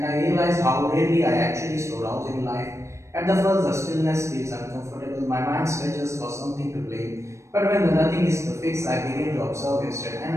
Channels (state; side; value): late; left; 0.14 ms